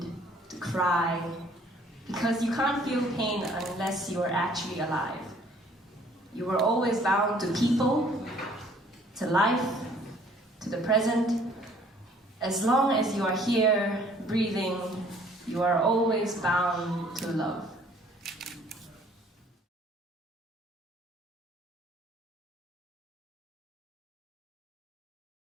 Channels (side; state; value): both; normal; correlation 0.58